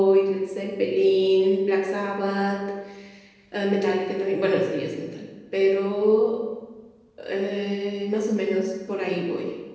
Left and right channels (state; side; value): identical; both; correlation 1.00